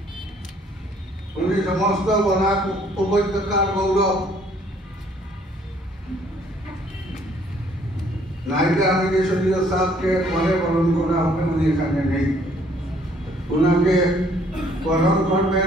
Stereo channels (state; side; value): normal; both; correlation 0.62